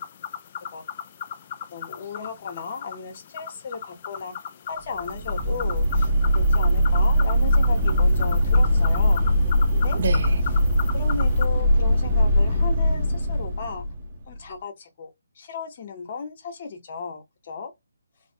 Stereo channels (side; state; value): both; inverted; correlation -0.80